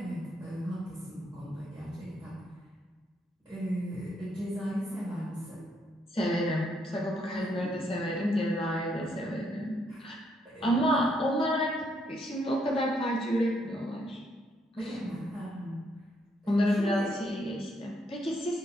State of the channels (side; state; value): both; normal; correlation 0.74